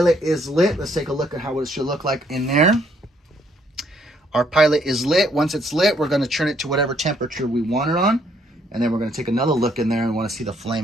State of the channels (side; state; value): both; normal; correlation 0.68